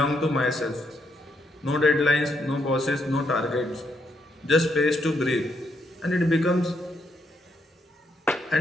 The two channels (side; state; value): both; normal; correlation 0.77